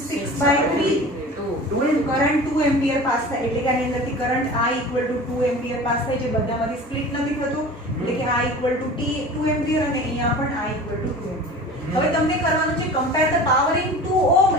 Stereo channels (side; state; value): both; normal; correlation 0.38